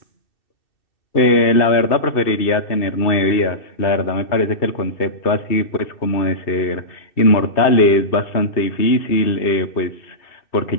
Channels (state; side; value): late; right; 2.6 ms